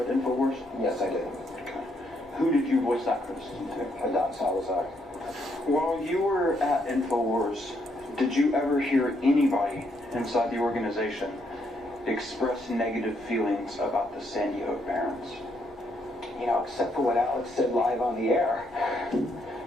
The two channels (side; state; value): both; normal; correlation 0.74